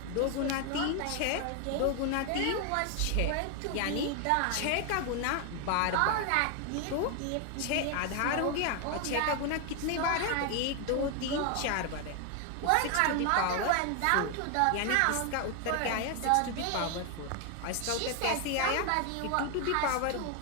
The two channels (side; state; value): both; different; correlation 0.01